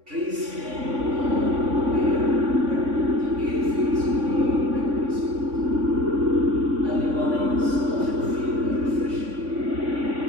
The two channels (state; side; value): late; left; 3.5 ms